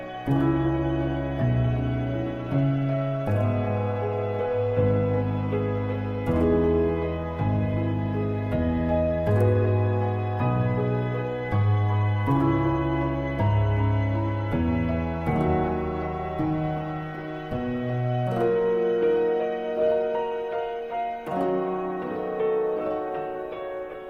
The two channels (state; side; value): identical; both; correlation 1.00